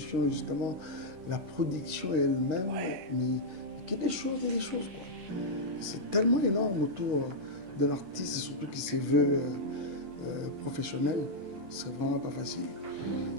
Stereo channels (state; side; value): late; left; 11 ms